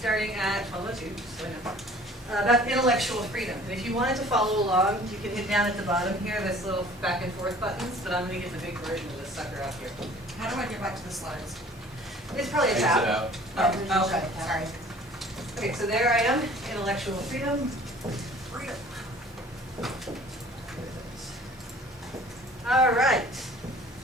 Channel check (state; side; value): normal; both; correlation 0.50